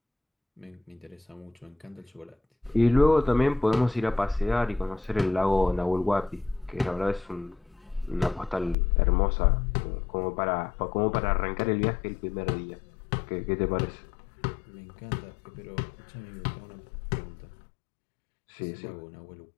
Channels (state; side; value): drops out; right; at 8.8 s